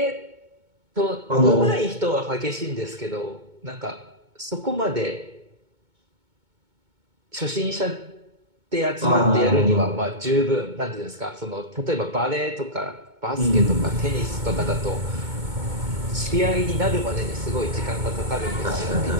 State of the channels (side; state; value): left; late; 2.2 ms